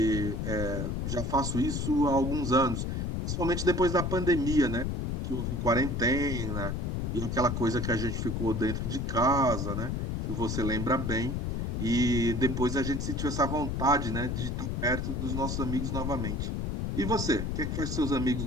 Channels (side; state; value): left; noise; rumble, 1 dB below the sound